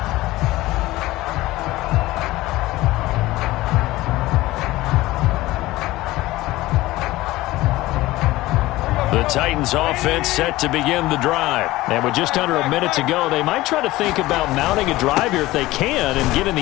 The Titans offense set to begin the drive. And with just under a minute to go, they might try to think about mounting a drive here if they can and get in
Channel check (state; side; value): quieter; right; 18.0 dB